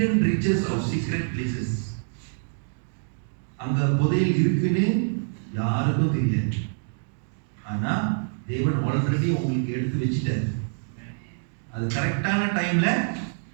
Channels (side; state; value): left; silent; digital silence